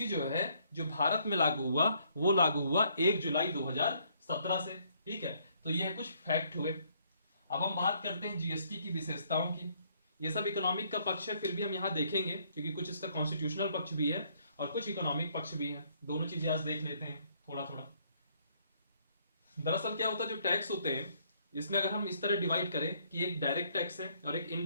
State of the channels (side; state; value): both; inverted; correlation -0.67